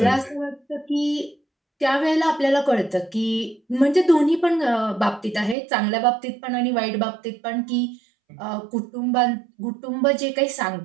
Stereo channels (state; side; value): drops out; left; at 5.6 s